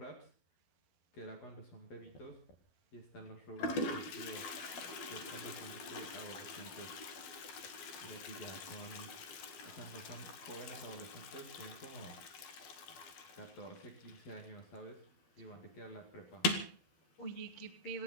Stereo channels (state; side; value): late; right; 12 ms